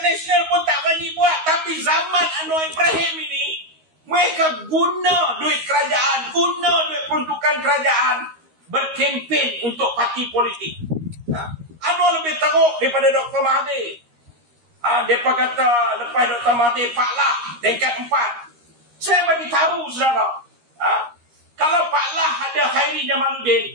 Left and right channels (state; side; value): late; left; 13 ms